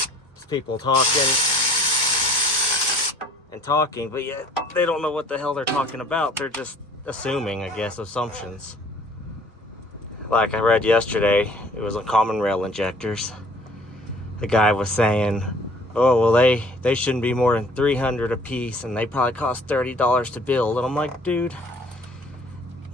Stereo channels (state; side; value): normal; both; correlation 0.54